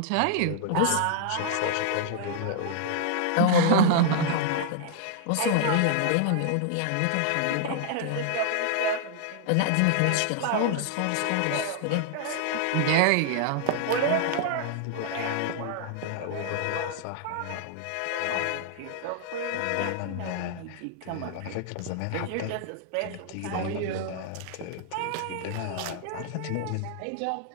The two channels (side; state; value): both; different; correlation -0.01